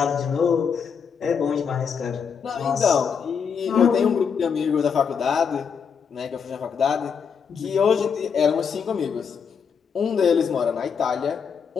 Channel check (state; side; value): quieter; right; 6.6 dB